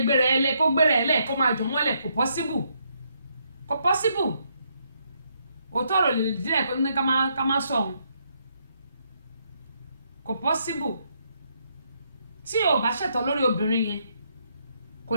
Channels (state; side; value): inverted; both; correlation -0.75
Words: gbéra ẹ lẹ kó gbéra ẹ lẹ kó máa jù mọ́lẹ̀ kò possible òótọ́ ọ̀rọ̀ lè díẹ̀ kó ní ká má sọ òun kò possible tí ò bá ṣẹ̀tọ́ lórí obìnrin yẹn kò